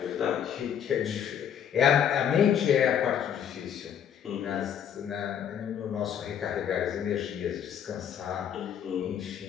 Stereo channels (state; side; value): quieter; right; 8.9 dB